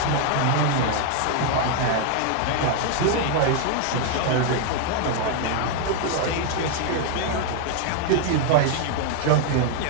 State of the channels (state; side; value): different; both; correlation 0.00